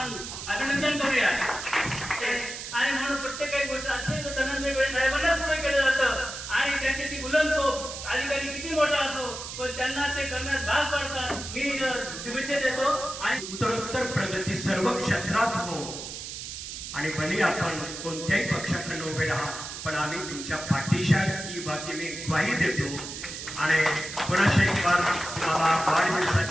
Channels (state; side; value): noise; right; hiss, 8 dB below the sound